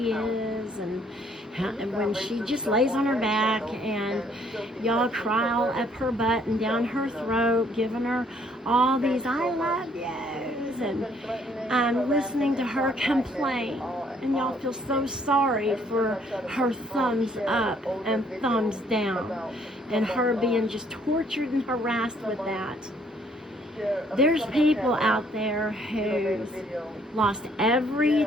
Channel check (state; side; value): normal; both; correlation 0.64